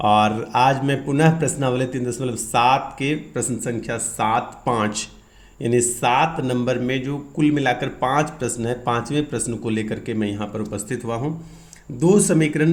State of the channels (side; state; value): both; identical; correlation 1.00